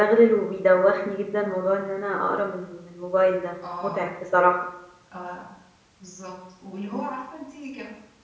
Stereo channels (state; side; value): identical; both; correlation 1.00